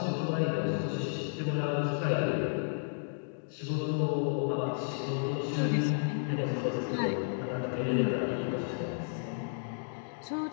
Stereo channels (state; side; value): silent; right; digital silence